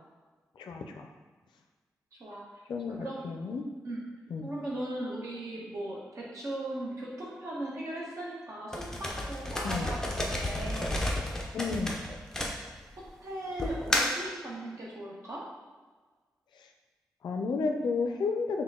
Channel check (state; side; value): normal; both; correlation 0.75